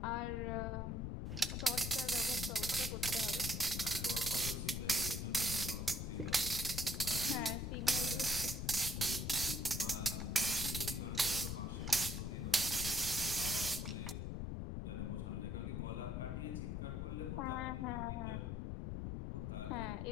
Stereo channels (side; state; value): left; noise; rumble, 3 dB below the sound